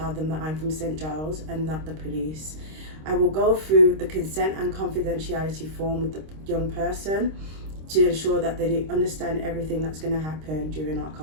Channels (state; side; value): late; left; 26 ms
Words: them that I'm from St Giles and not the police. I will go through the consent and confidentiality form with the young person to ensure that they understand everything that's going to happen during our